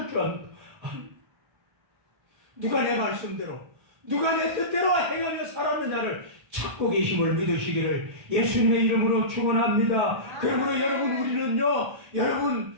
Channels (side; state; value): left; late; 1.3 ms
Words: 줄 압니다. 누가 내 말씀대로 누가 내 뜻대로 행하며 살았느냐를 찾고 계심을 믿으시기를 예수님의 이름으로 축원합니다. 그러므로 여러분 우리는요 여러분